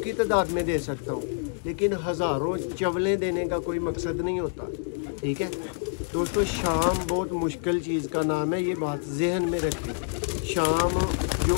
तादाद में दे सकता हूँ, लेकिन हज़ारों चवलें देने का कोई मकसद नहीं होता। ठीक है दोस्तों, शाम बहुत मुश्किल चीज़ का नाम है, ये बात जहन में रखें। शाम जो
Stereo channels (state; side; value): silent; right; 59 dB below the other